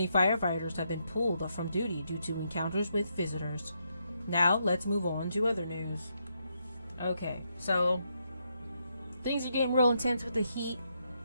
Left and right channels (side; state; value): both; inverted; correlation -0.79